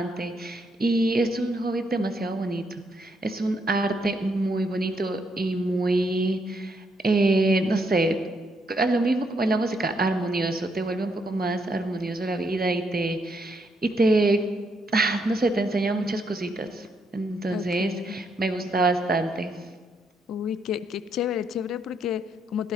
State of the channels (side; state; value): both; normal; correlation 0.76